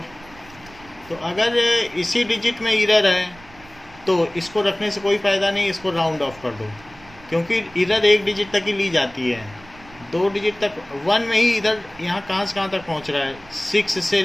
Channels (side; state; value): right; noise; rumble, 23 dB below the sound